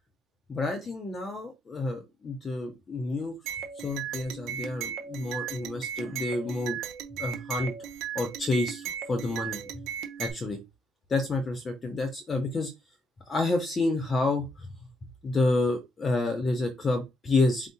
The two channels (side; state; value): both; normal; correlation 0.75